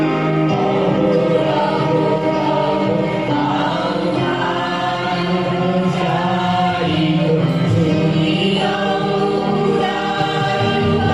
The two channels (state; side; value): noise; right; hum, 23 dB below the sound